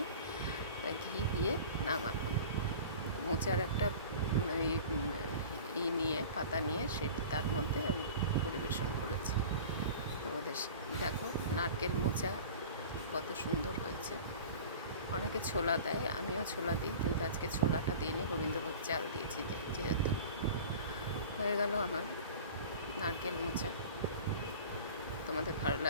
তাই ঘি দিয়ে নামালাম। মোচার একটা পাতা নিয়ে তার মধ্যে আমি পরিবেশন করেছি। তোমাদের দেখো, নারকেল মোচা কত সুন্দর হয়েছে। অনেকে ছোলা দেয়, আমিও ছোলা দিই, কিন্তু আজকে ছোলাটা দিইনি, গোবিন্দভোগ চাল দিয়েছি যেহেতু। হয়ে গেল আমার নারকেল মোচা। তোমাদের ভালো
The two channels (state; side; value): inverted; both; correlation -0.39